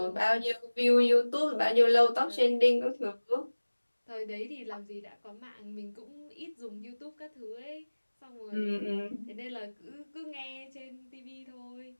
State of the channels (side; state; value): both; inverted; correlation -1.00